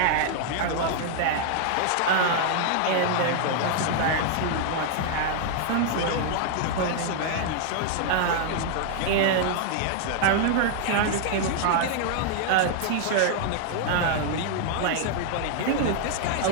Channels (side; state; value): both; different; correlation -0.01